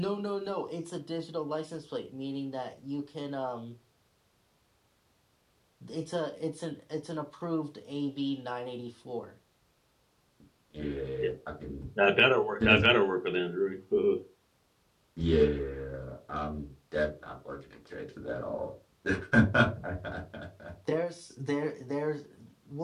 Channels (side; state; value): both; identical; correlation 1.00